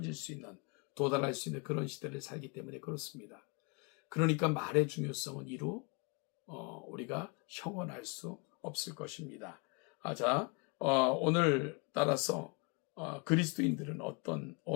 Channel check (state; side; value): quieter; right; 31.9 dB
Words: 수 있는, 도달할 수 있는 그런 시대를 살기 때문에 그렇습니다. 그러니까 말의 중요성은 이루 우리가 형언할 수 없을 것입니다. 오늘 따라서 그리스도인들은 어떤